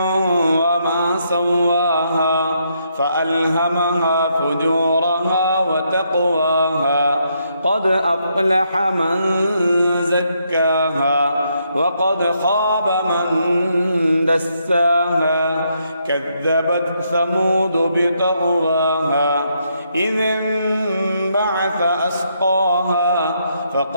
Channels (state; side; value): inverted; both; correlation -0.76